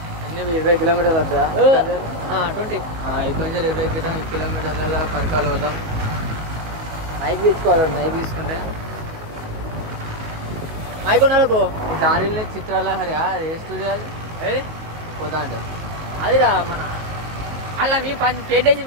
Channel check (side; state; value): left; late; 19 ms